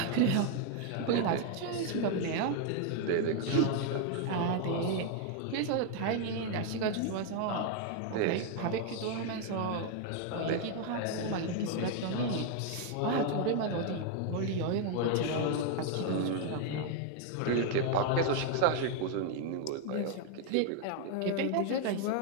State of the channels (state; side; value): different; both; correlation 0.01